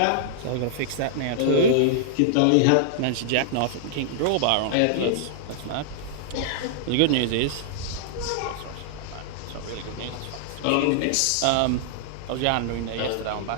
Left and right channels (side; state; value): both; different; correlation -0.01